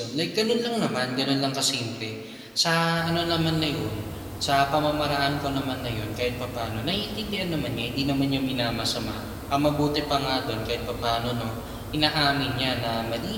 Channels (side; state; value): both; identical; correlation 1.00